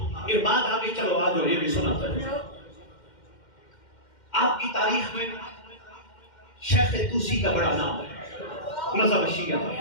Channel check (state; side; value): late; right; 2.1 ms